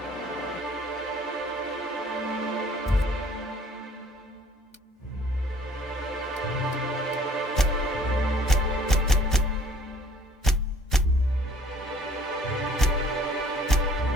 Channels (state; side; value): normal; both; correlation 0.57